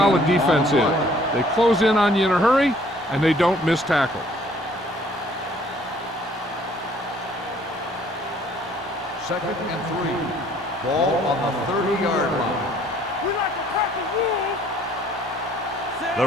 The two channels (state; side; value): normal; both; correlation 0.59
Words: defense is. They close in on you in a hurry, and they don't miss tackle. Second and 3. Ball on the 30-yard line. We like to practice rules. The